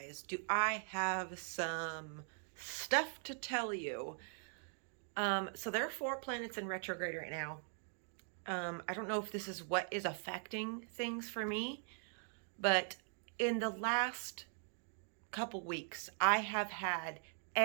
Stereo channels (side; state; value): left; silent; 50 dB below the other